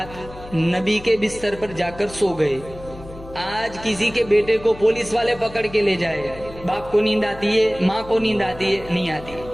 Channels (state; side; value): noise; left; hum, 16 dB below the sound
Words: نبی کے بستر پر جا کر سو گئے۔ آج کسی کے بیٹے کو پولیس والے پکڑ کے لے جائے، باپ کو نیند آتی ہے، ماں کو نیند آتی ہے؟ نہیں آتی،